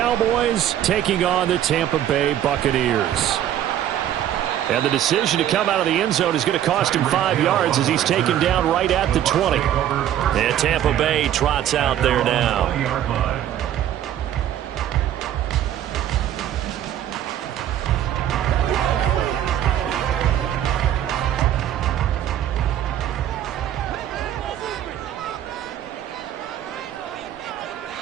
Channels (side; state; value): left; quieter; 11.3 dB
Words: taking on the Tampa Bay Buccaneers. And the decision to come out of the end zone is going to cost him 5 yards as he's taken down right at the 20. And Tampa Bay trots out there now.